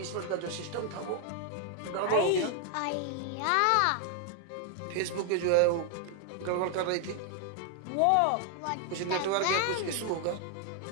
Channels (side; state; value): both; different; correlation 0.00